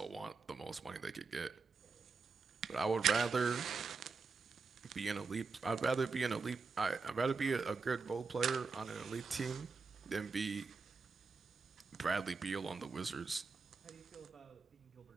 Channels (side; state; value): left; quieter; 4.6 dB